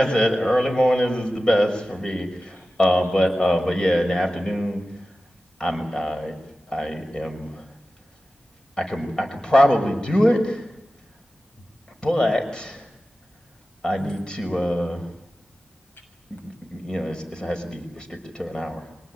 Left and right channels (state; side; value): normal; both; correlation 0.95